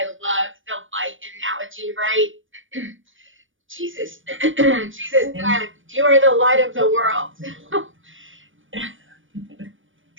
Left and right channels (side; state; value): left; late; 0.57 ms